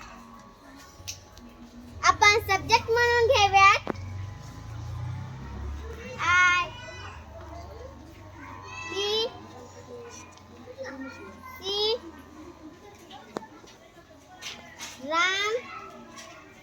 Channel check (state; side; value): identical; both; correlation 1.00